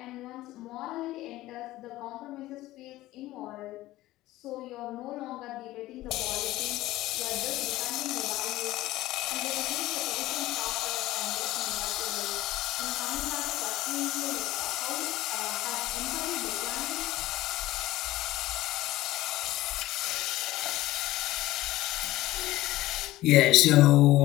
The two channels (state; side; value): quieter; right; 16.6 dB